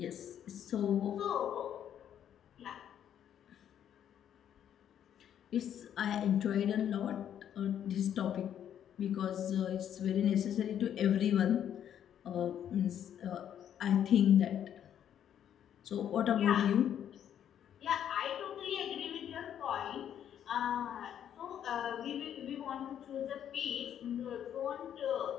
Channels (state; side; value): quieter; right; 9.8 dB